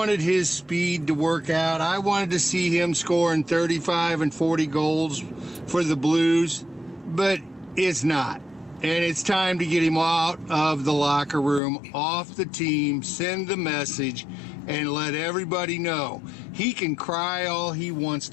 his speed to work out. I wanted to see him scoring 35 and 40 goals for the Blues, but it's not. And it's time to get him out of the locker room, off the team, send the message, and let everybody know he can cry all he wants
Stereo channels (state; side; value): drops out; right; at 11.6 s